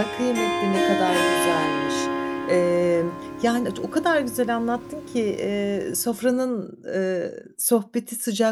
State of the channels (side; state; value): both; identical; correlation 1.00